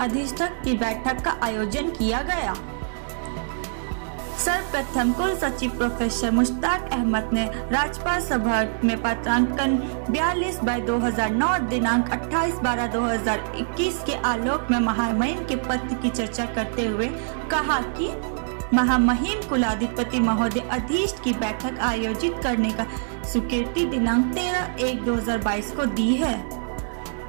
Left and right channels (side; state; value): left; silent; digital silence